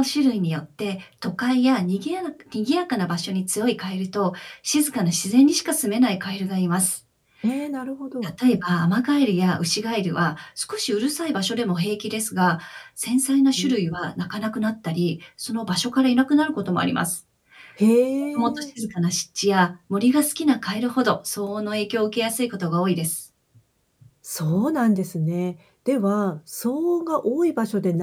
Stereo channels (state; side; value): identical; both; correlation 1.00